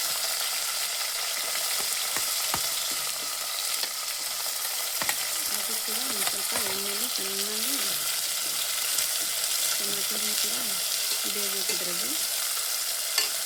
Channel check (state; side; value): identical; both; correlation 1.00